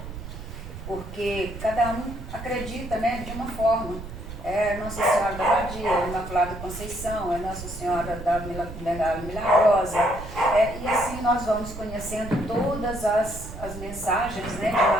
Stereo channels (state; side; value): noise; right; rumble, 10 dB below the sound